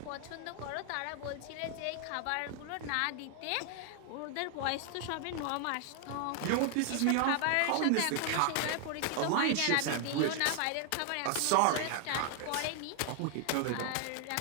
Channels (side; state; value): both; different; correlation 0.00